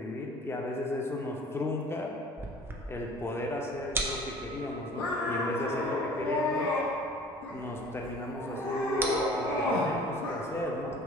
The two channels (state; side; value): normal; both; correlation 0.47